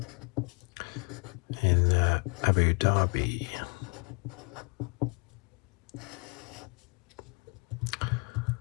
in Abu Dhabi.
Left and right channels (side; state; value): right; quieter; 30.9 dB